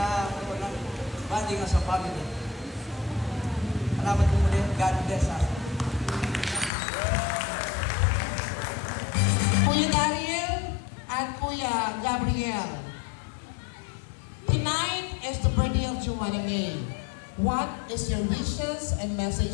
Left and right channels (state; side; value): drops out; right; at 6.7 s